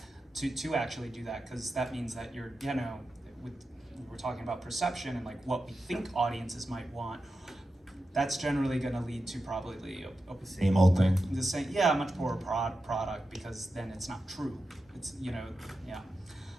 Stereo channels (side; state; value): both; normal; correlation 0.91